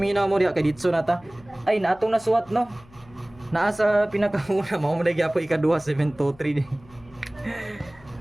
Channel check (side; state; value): left; noise; hum, 25 dB below the sound